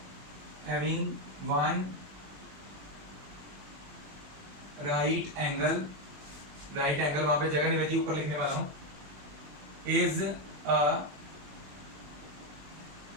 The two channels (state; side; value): late; left; 21 ms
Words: having one right angle वहां पे जगह नहीं बची, ऊपर लिखने वाला हूं, is a